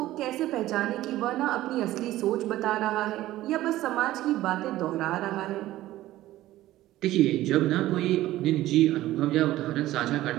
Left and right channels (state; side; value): quieter; left; 15.4 dB